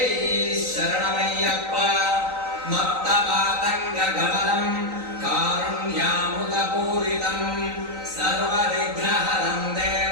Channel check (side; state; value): left; late; 3.9 ms